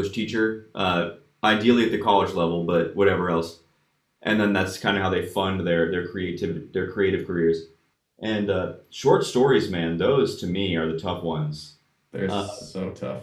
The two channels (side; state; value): both; identical; correlation 1.00